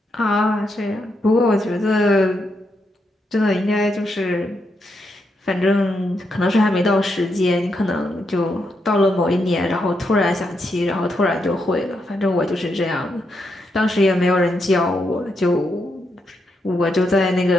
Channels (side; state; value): both; normal; correlation 0.81